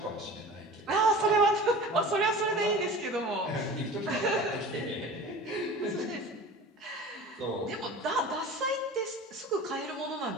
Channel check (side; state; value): both; normal; correlation 0.38